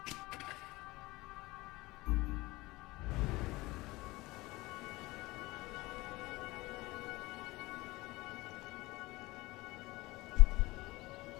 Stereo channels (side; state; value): right; quieter; 20.8 dB